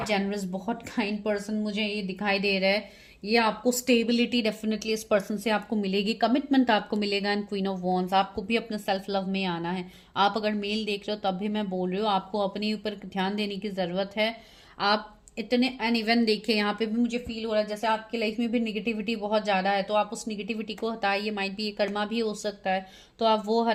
जेनरस, बहुत काइंड पर्सन मुझे ये दिखाई दे रहा है। ये आपको स्टेबिलिटी डेफिनेटली इस पर्सन से आपको मिलेगी, कमिटमेंट आपको मिलेगा। एंड क्वीन ऑफ वॉन्ड्स, आपको भी अपने सेल्फ लव में आना है। आप अगर मेल देख रहे हो तब भी मैं बोल रही हूँ, आपको अपने ऊपर ध्यान देने की जरूरत है। आप इतने एंड इवन देखिए, यहाँ पे भी मुझे फील हो रहा है जैसे आपकी लाइफ में भी निगेटिविटी बहुत ज्यादा है, तो आप उस निगेटिविटी को हटाइए। माइट भी ये कर्मा भी हो सकता है, तो आप वो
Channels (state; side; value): identical; both; correlation 1.00